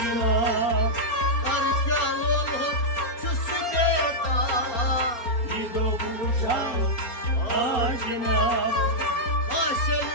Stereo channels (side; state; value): right; late; 4.2 ms